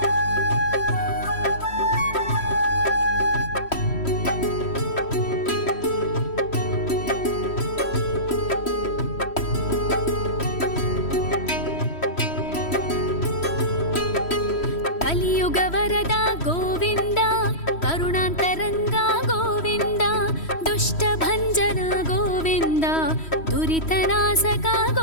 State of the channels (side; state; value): right; late; 3.1 ms